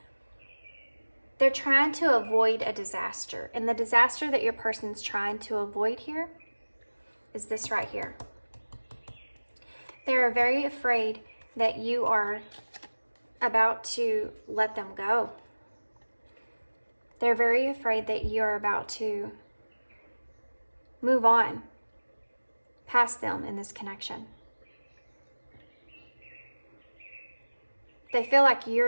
they're trying to avoid a disaster. And the disaster that your person's trying to avoid here is this right here. They're very afraid that you are about to let them go. They're very afraid that you're about to move on past them in this connection. They feel like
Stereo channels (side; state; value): both; inverted; correlation -1.00